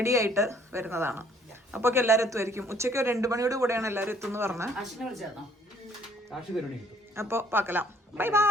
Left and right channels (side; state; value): both; normal; correlation 0.61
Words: ആയിട്ട് വരുന്നതാണ്. അപ്പൊ എല്ലാരും എത്തുമായിരിക്കും. ഉച്ചയ്ക്ക് 2 മണിയോട് കൂടെയാണ് എല്ലാരും എത്തുമെന്ന് പറഞ്ഞ്. അപ്പൊ പാക്കലാം. Bye